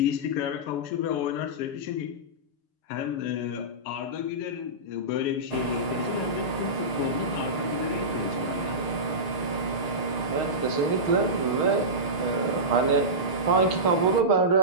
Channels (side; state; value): right; late; 6.6 ms